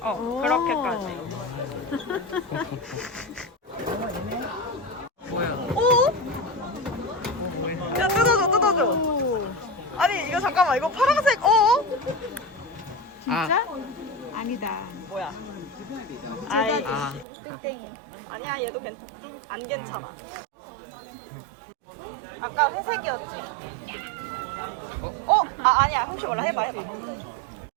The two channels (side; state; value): left; drops out; at 17.2 s